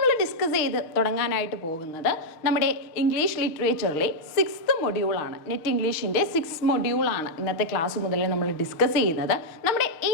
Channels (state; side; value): late; right; 6.4 ms